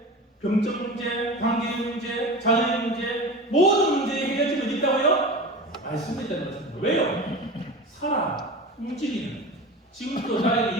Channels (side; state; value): both; normal; correlation 0.31